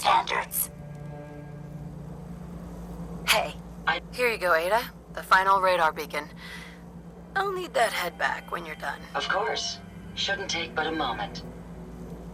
Hey, here you go, Ada. The final radar beacon. I'll need that head back when you're done. Of course. Shouldn't take but a moment.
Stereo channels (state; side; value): identical; both; correlation 1.00